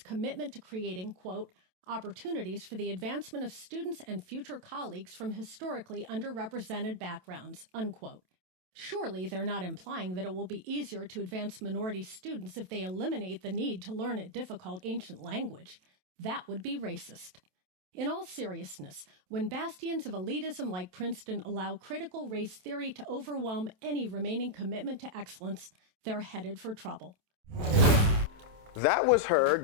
to creating, quote, opportunities for the advancement of students and future colleagues from historically underrepresented backgrounds, unquote. Surely they're not implying that it will be easier to advance minority students if they eliminate the need to learn a difficult ancient language. That would be racist. In all seriousness, when bastions of elitism like Princeton allow critical race theory to overwhelm any remaining commitment to excellence, they're headed for trouble. That was her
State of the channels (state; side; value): late; left; 27 ms